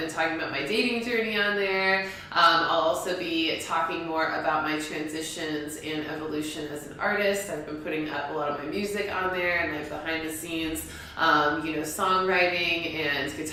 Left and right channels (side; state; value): both; identical; correlation 1.00